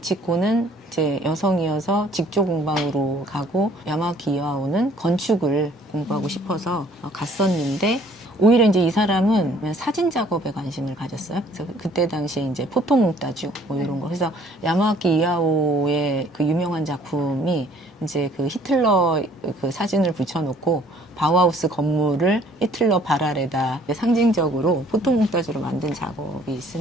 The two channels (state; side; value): normal; both; correlation 0.58